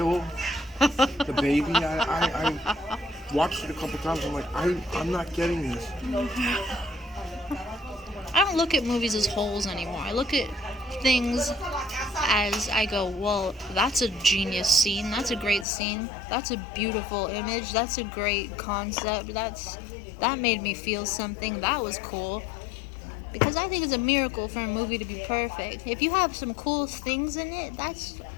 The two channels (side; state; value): right; drops out; at 15.7 s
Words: the baby? I watched it a couple times. I'm like, I'm not getting this. I don't look at movies as wholes anymore. I look at things as I go, well, that's a genius scene. That's a great scene. That's a beautiful image. That's a great concept. That made me feel something. That was cool. Because I think it's a miracle for a movie to be perfect. If you have some cool things in it,